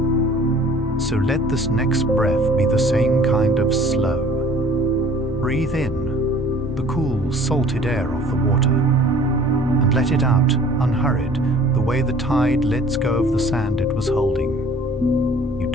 So let this next breath be the same kind of slow. Breathe in the cool, salted air of the water, and let it out, unhurried, the way the tide lets go of the sand it was holding. You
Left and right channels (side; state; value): left; noise; hum, 20 dB below the sound